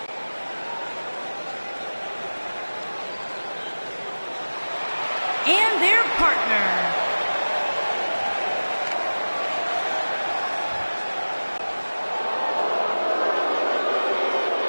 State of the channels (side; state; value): both; inverted; correlation -1.00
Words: And their partner.